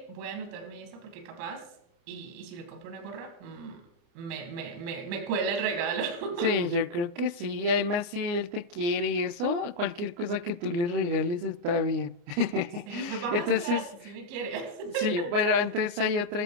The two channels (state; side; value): late; left; 29 ms